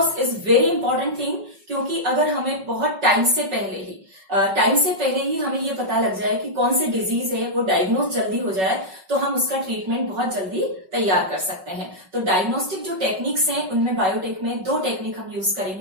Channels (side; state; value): left; late; 5.3 ms